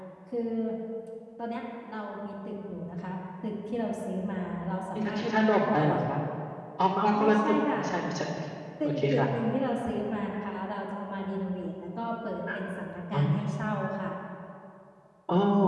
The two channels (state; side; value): identical; both; correlation 1.00